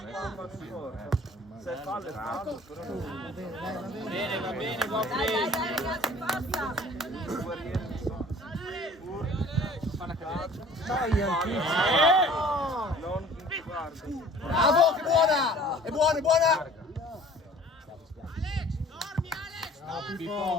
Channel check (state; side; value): normal; both; correlation 0.49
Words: in porta. Se fallo è fallo, però non va bene, buon play. Dai ragazzi, basta! Non guarda. Bravo, che buona! È buona, è buona!